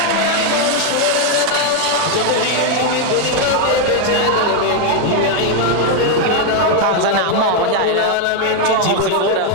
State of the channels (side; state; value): both; different; correlation 0.01